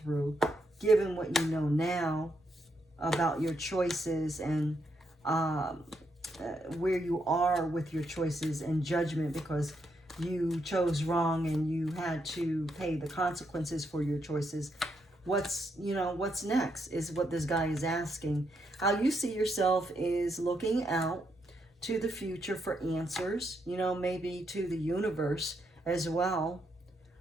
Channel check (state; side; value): normal; both; correlation 0.79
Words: given what you know now about your choices and where you are with your choices and judgment because you chose wrong and you had to pay the consequences for your choices? What's next is what this guy is asking. How you see yourself is looking out to the future for answers, maybe to the universe as well.